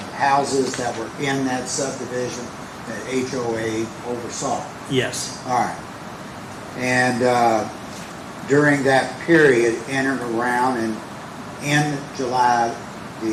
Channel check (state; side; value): identical; both; correlation 1.00